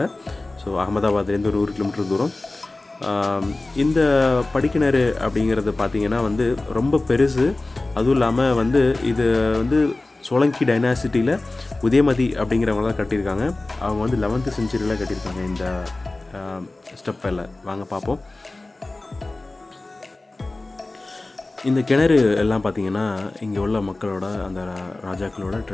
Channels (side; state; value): right; quieter; 3.0 dB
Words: ஸோ அகமதாபாத்லேருந்து ஒரு 1 கிலோமீட்டர் தூரம். இந்த படிக்கிணறு அப்படிங்கிறது பார்த்திங்கன்னா வந்து ரொம்ப பெருசு. அதுவும் இல்லாமல் வந்து இது வந்து சோலங்கி டைனாசிட்டியில் உதயமதி அப்படிங்கிறவங்க தான் கட்டியிருக்காங்க. அவங்க வந்து 11th செஞ்சுரியில் கட்டியிருக்காங்க இந்த ஸ்டெப்பில். வாங்க பார்ப்போம். இந்த கிணறு எல்லாம் பார்த்திங்கன்னா இங்கே உள்ள மக்களோட அந்த ராஜாக்களோட